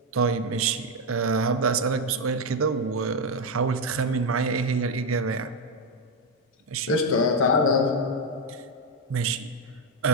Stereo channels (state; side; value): normal; both; correlation 0.04